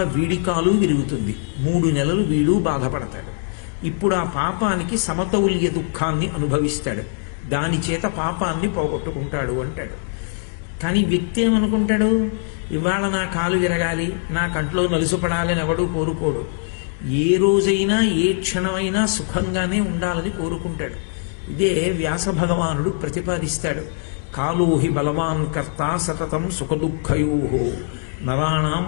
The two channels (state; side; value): silent; right; 64 dB below the other